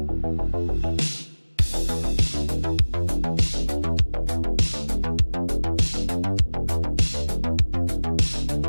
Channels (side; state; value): both; inverted; correlation -1.00